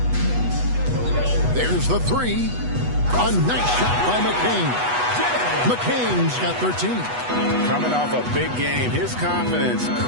There's the 3. A nice shot by McCain. McCain's got 13. Coming off a big game, his confidence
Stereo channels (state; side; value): late; left; 8.2 ms